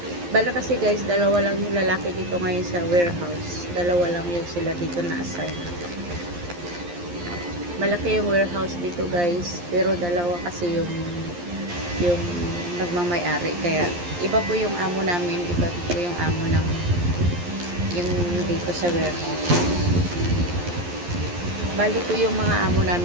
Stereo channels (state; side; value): late; left; 11 ms